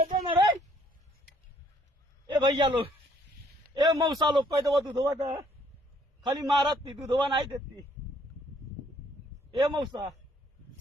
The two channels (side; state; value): both; normal; correlation 0.64